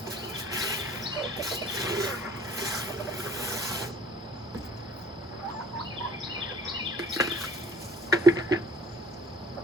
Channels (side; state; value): both; normal; correlation 0.52